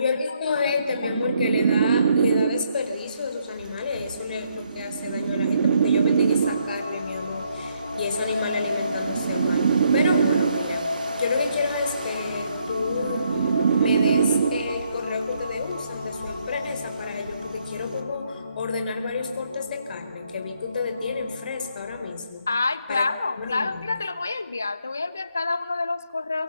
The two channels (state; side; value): inverted; both; correlation -0.73